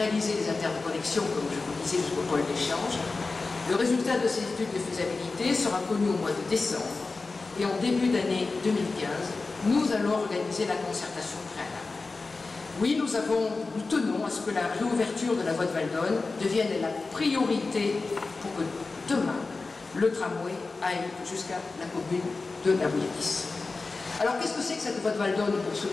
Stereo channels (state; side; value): quieter; right; 3.8 dB